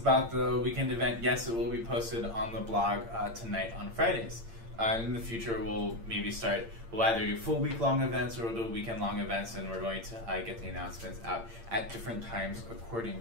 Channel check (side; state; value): left; late; 8.8 ms